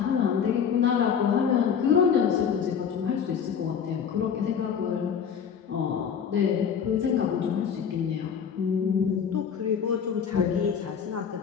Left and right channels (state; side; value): quieter; right; 7.3 dB